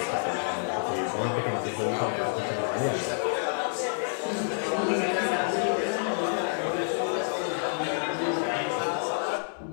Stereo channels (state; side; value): silent; right; digital silence